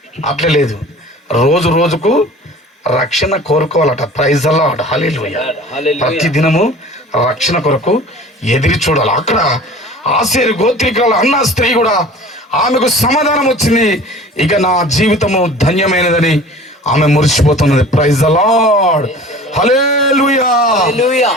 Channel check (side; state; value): both; normal; correlation 0.43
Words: అట్లే లేదు, రోజు రోజుకు రక్షణ కోరుకోవాలట. Praise the lord. హల్లెలూయా. ప్రతి దినము రక్షణ కొరకు ఎదిరి చూడాలి. అక్కడ ఆషేరు గోత్రికురాలు అన్న స్త్రీ కూడా ఆమెకు సమాధానం వచ్చింది. ఇక నా జీవితము ధన్యమైనదని ఆమె మురిసిపోతున్నది. Praise the lord. హల్లెలూయా.